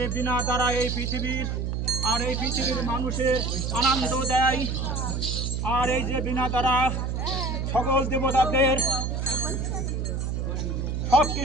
বিনা দ্বারা এই পৃথিবীর আর এই পৃথিবীর মানুষের আনন্দ দেয়, আর এই যে বিনা দ্বারা সকল দেবতাদের সব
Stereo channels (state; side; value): noise; right; hum, 1 dB below the sound